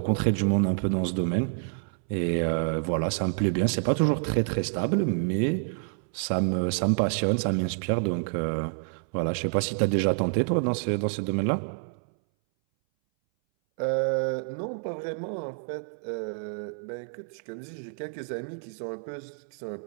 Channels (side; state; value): left; silent; 59 dB below the other